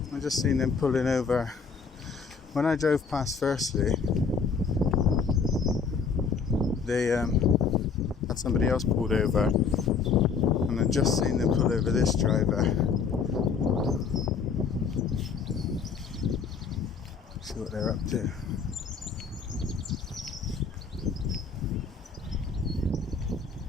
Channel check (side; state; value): right; quieter; 5.5 dB